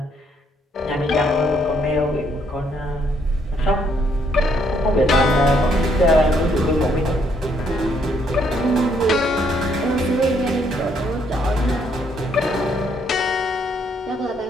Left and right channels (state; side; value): normal; both; correlation 0.70